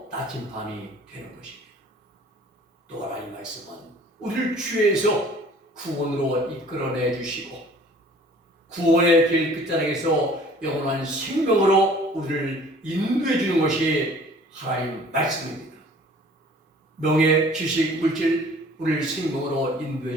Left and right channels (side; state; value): both; normal; correlation 0.51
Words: 나침반이 되는 것입니다. 또 하나님 말씀은 우리를 죄에서 구원으로 이끌어내 주시고 구원의 길 끝자락에서 영원한 생명으로 우리를 인도해 주는 것이 하나님 말씀입니다. 명예, 지식, 물질 우리를 생명으로 인도해